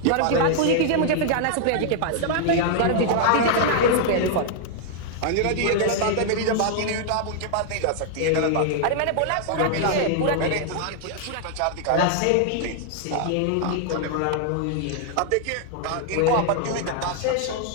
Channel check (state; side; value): different; both; correlation 0.00